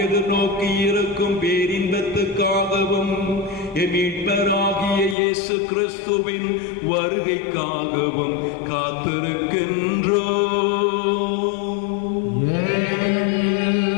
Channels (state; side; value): drops out; right; at 5.2 s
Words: எதிர்நோக்கி இருக்கும் பேரின்பத்துக்காகவும் மீட்பராகிய இயேசு கிறிஸ்துவின் வருகைக்காகவும் காத்திருக்கின்றோம்.